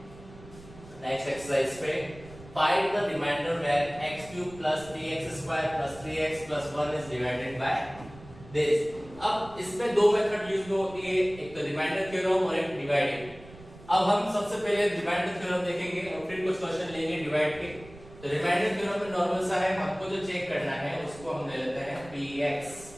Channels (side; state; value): right; noise; rumble, 19 dB below the sound